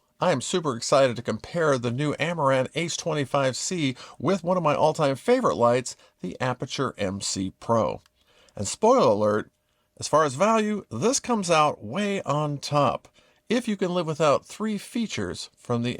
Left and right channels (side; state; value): both; identical; correlation 1.00